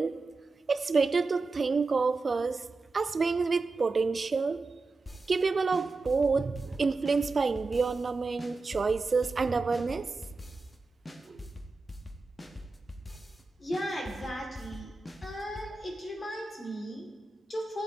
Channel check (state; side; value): quieter; left; 3.8 dB